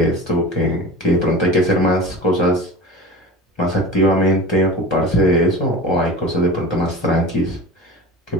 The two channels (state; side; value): normal; both; correlation 0.33